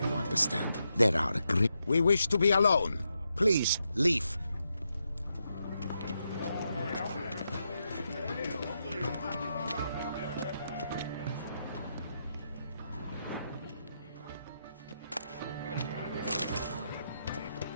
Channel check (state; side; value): inverted; both; correlation -0.84